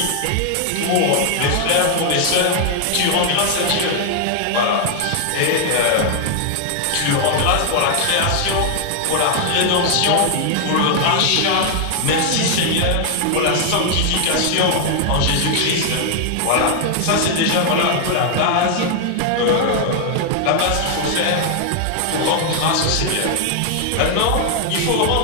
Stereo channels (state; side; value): different; both; correlation 0.00